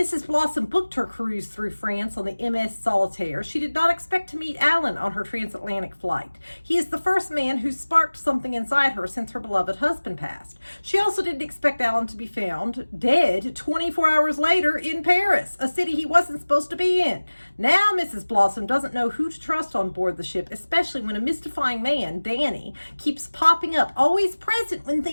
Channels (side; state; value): both; inverted; correlation -1.00